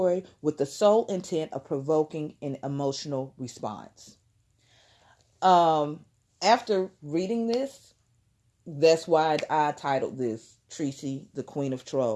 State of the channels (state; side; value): identical; both; correlation 1.00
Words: with the sole intent of provoking an emotional response. After reading this, that's why I titled this Treecy, the Queen of